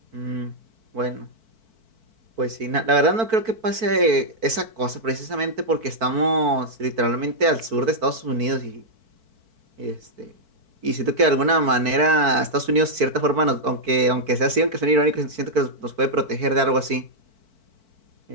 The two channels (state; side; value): late; left; 4.5 ms